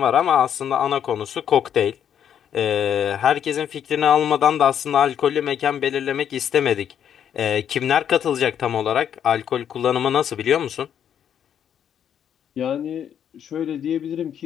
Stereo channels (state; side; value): quieter; right; 9.0 dB